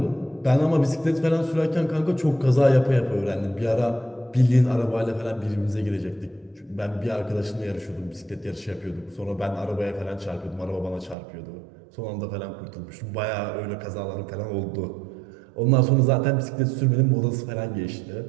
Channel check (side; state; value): left; drops out; at 11.2 s